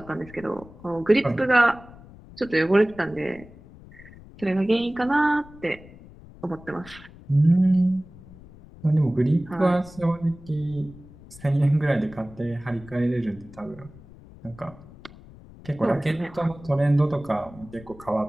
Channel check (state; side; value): noise; left; rumble, 20 dB below the sound